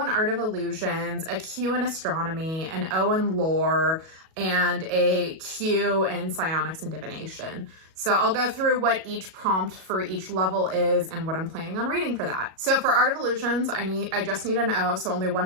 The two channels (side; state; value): left; late; 37 ms